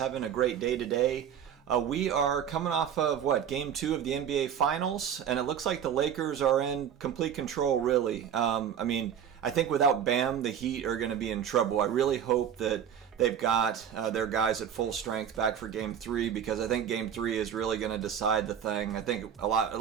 a great day today. We are coming off of Game 2 of the NBA Finals, and it looks like the Lakers are in complete control, really. I think without Bam, the Heat are going to be in trouble. I really hope that they've got their guys at full strength back for Game 3, because I think Game 3 is really going to decide the thing. I think a lot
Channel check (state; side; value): quieter; left; 8.7 dB